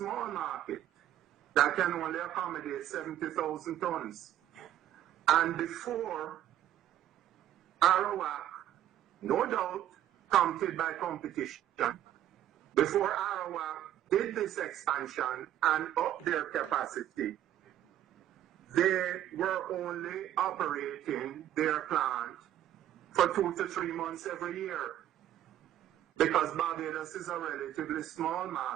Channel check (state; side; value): quieter; left; 12.0 dB